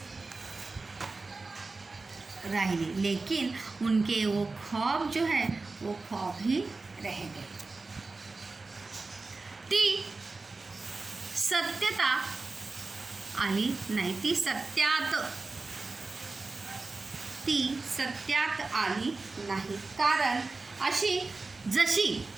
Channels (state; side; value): quieter; left; 3.7 dB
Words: रही, लेकिन उनके वो ख्वाब जो है वो ख्वाब ही रह गए। ती सत्यता आली नाही, ती सत्यात आली नाही, कारण अशी जशी